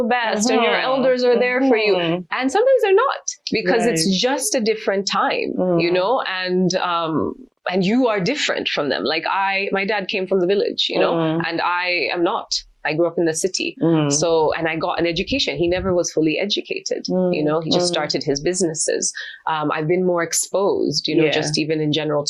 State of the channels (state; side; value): identical; both; correlation 1.00